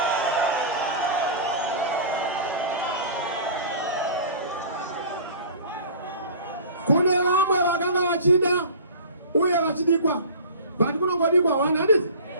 kune vamwe vakanga vachida uye vachidikwa but kunongodikwa one handiti.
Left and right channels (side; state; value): both; inverted; correlation -0.39